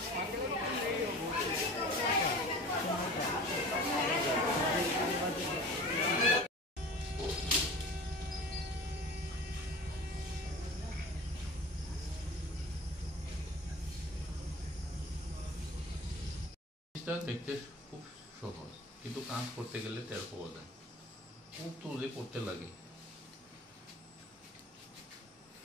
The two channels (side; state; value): both; normal; correlation 0.39